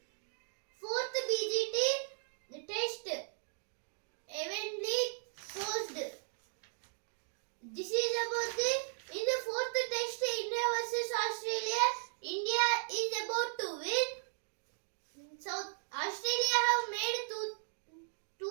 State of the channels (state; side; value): silent; left; digital silence